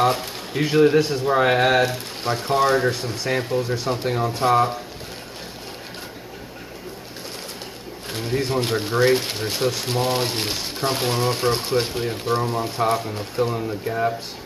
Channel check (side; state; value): both; identical; correlation 1.00